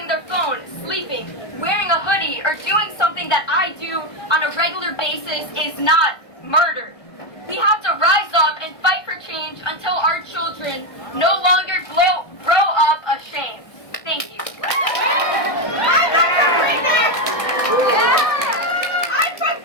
their phone, sleeping, wearing a hoodie, or doing something that I do on a regular basis is not murder. We have to rise up and fight for change until our children no longer grow up ashamed. Thank you. I'm from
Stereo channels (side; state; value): right; late; 1.2 ms